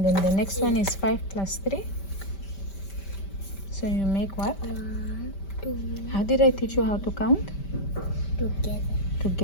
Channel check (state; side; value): late; right; 5.1 ms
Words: then the next one is 5 plus 3. So you make what? 1, 2. How did I teach you how to count? Together.